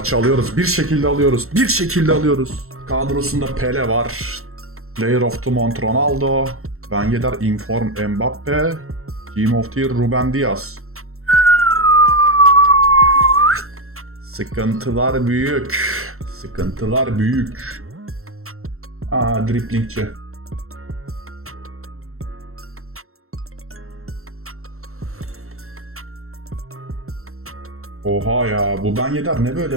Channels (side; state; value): left; late; 0.63 ms